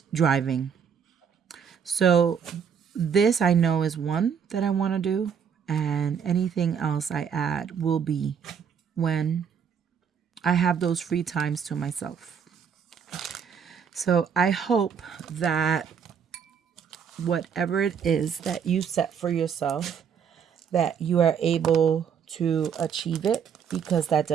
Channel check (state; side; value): quieter; left; 7.3 dB